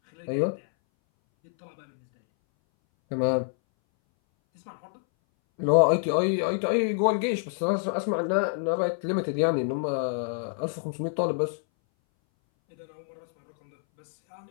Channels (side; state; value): right; silent; 60 dB below the other